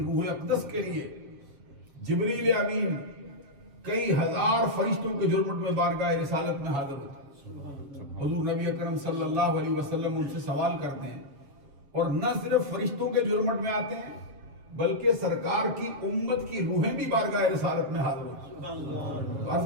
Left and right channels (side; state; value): left; late; 7.1 ms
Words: اقدس کے لیے جبریل امین کئی ہزار فرشتوں کے جرمٹ میں بارگاہ رسالت میں حاضر ہوتے ہیں۔ حضور نبی اکرم صلی اللہ علیہ وسلم ان سے سوال کرتے ہیں اور نہ صرف فرشتوں کے جرمٹ میں آتے ہیں بلکہ سرکار کی امت کی روحیں بھی بارگاہ رسالت میں حاضر ہوتی ہیں۔ عرض